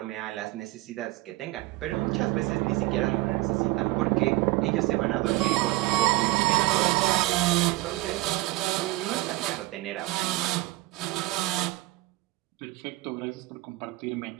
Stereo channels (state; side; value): quieter; left; 19.9 dB